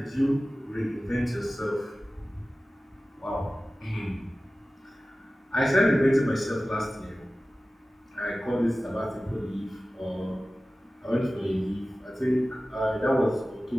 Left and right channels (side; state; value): both; normal; correlation 0.96